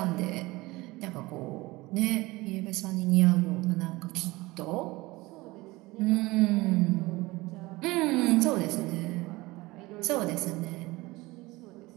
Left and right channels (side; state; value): left; quieter; 21.0 dB